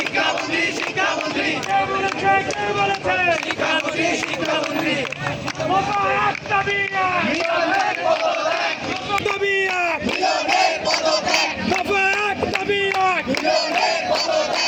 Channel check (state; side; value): identical; both; correlation 1.00